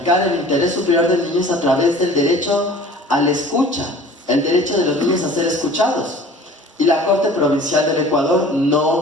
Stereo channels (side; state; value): both; normal; correlation 0.45